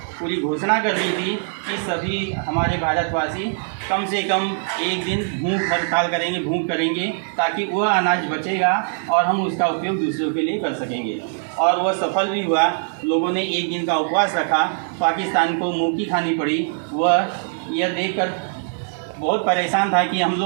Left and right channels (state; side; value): silent; left; digital silence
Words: पूरी घोषणा कर दी थी कि सभी हमारे भारतवासी कम से कम 1 दिन भूख हड़ताल करेंगे, भूख करेंगे, ताकि वह अनाज बचेगा और हम उसका उपयोग दूसरों के लिए कर सकेंगे। और वह सफल भी हुआ। लोगों ने 1 दिन का उपवास रखा। पाकिस्तान को मुँह की खानी पड़ी। वह यह देखकर बहुत परेशान था कि हम